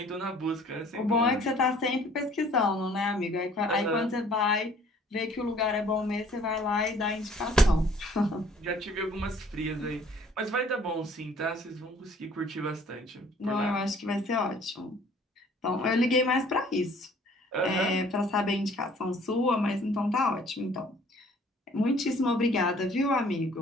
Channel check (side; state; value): both; normal; correlation 0.56